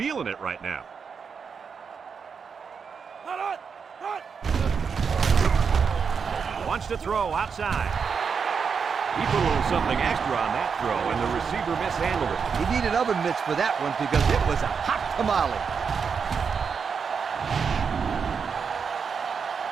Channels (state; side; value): quieter; left; 6.1 dB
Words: it right now. Wants to throw outside. He put a little something extra on that throw, and the receiver mishandled it. He needed oven mitts for that one because it was a hot tamale.